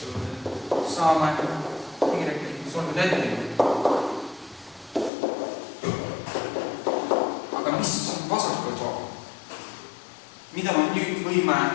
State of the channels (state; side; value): drops out; right; at 5.1 s